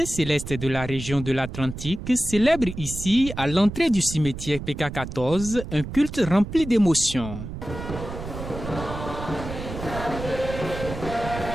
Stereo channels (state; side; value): noise; right; rumble, 9 dB below the sound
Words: célestes de la région de l'Atlantique célèbrent ici, à l'entrée du cimetière PK14, un culte rempli d'émotions.